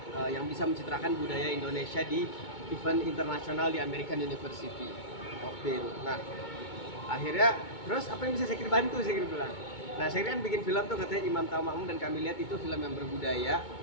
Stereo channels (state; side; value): late; right; 2.2 ms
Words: yang bisa mencitrakan budaya Indonesia di event internasional di American University of Beirut. Nah, akhirnya terus apa yang bisa Syakir bantu? Syakir bilang. Nah, Syakir kan bikin film tuh katanya Imam Tanpa Makmum, dan kami lihat itu film yang berbudaya,